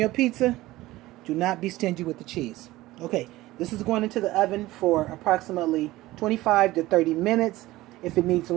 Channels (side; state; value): left; quieter; 17.7 dB